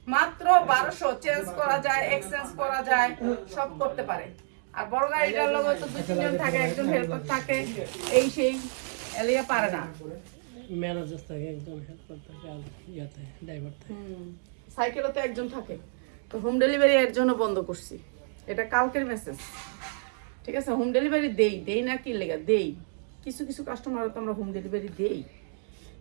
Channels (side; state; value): left; silent; digital silence